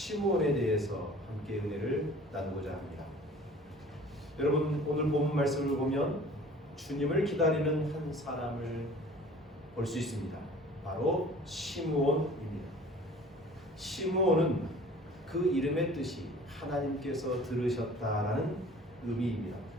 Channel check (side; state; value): both; normal; correlation 0.47